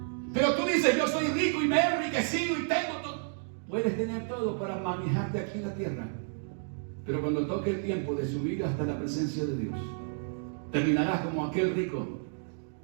Pero tú dices: yo soy rico y me he enriquecido y tengo todo. Puedes tener todo para manejarte aquí en la tierra, pero cuando toque el tiempo de subir hasta la presencia de Dios, terminarás como aquel rico,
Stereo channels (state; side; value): silent; left; digital silence